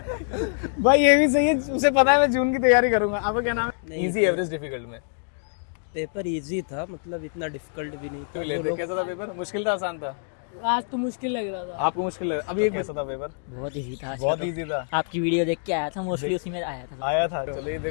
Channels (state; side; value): silent; right; digital silence